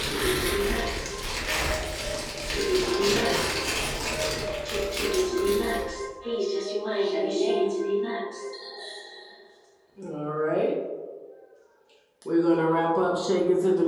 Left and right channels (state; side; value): identical; both; correlation 1.00